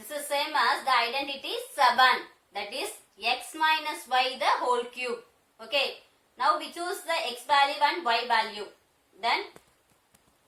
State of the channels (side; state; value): both; identical; correlation 1.00